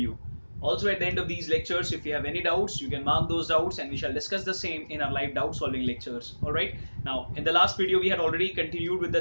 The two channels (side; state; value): both; inverted; correlation -1.00